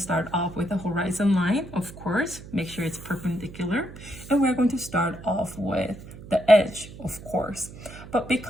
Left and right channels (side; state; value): right; noise; hum, 15 dB below the sound